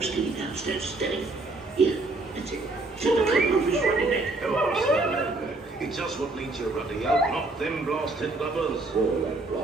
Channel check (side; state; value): left; quieter; 3.1 dB